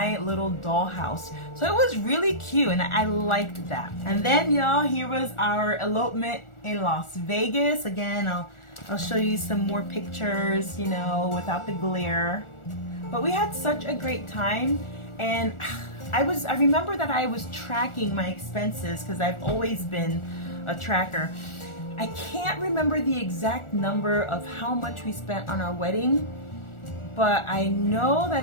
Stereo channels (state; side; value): late; right; 1.4 ms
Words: little dollhouse. So it was really cute, and I liked that. And then, y'all, here was our elopement in Las Vegas. Again, I'll show you some more pictures, you know, without the glare. But we had such a great time, and I remember that I was tracking my expenses because I've always been a tracker. I can't remember the exact number of how much we spent on our wedding, but I know